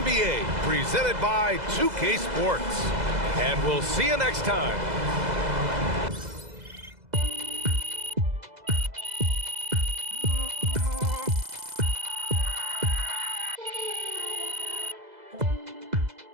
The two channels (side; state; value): left; late; 2.0 ms